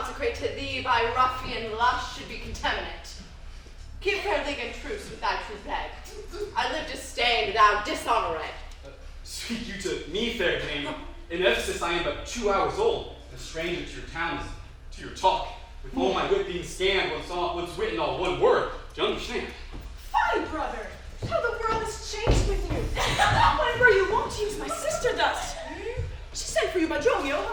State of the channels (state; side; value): identical; both; correlation 1.00